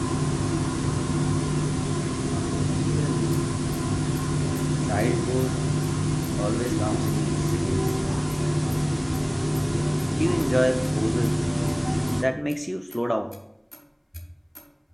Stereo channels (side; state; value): both; identical; correlation 1.00